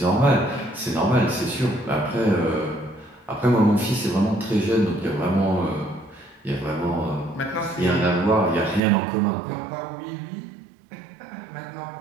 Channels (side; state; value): left; drops out; at 8.8 s